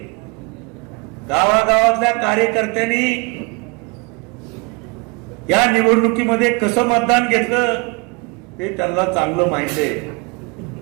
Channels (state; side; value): quieter; left; 29.5 dB